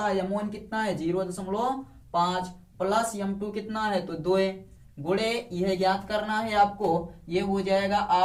है, m1 कितना है 0.5 प्लस m2 कितना है, तो 2 गुणे यह ज्ञात करना है आपको। ये हो जाएगा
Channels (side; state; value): both; identical; correlation 1.00